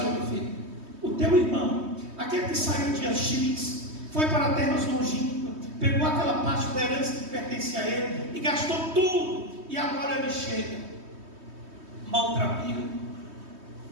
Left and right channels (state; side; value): late; left; 3.2 ms